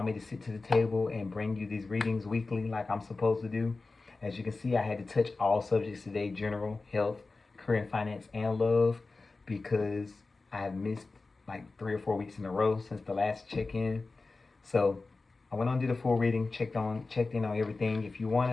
me to sit to the table and bring you these readings weekly like I'm supposed to do. As you can see, I had to touch all subjects today: general, health, career and finance, and love, because I have missed like 3 or 4 weeks in a row since the last check-in. So I went on to the full reading, checked in on everything. If you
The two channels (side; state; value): right; quieter; 3.7 dB